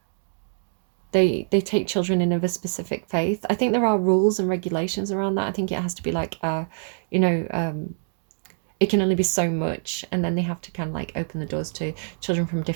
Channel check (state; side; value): silent; left; digital silence